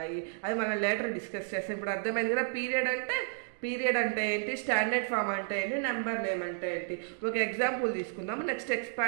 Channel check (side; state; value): left; silent; digital silence